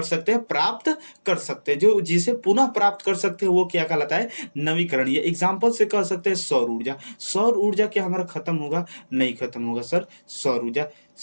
सकते हैं? प्राप्त कर सकते हैं। जो जिसे पुनः प्राप्त कर सकते हैं वो क्या कहलाता है? नवीकरणीय। एग्जाम्पल से कह सकते हैं सौर ऊर्जा। सौर ऊर्जा क्या हमारा खत्म होगा? नहीं खत्म होगा सर सौर ऊर्जा,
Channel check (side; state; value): both; inverted; correlation -1.00